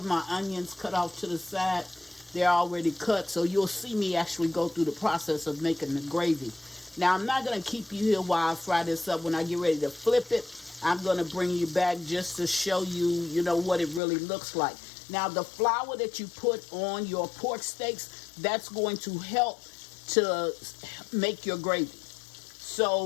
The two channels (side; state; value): right; drops out; at 14.0 s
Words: my onions cut off to the side. They're already cut, so you'll see me actually go through the process of making the gravy. Now, I'm not going to keep you here while I fry this up. When I get ready to flip it, I'm going to bring you back just to show you, what it really looks like. Now, the flour that you put on your pork steaks, that's going to help to make your gravy.